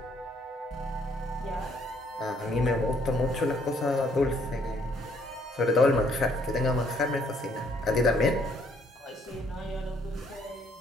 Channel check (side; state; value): both; normal; correlation 0.66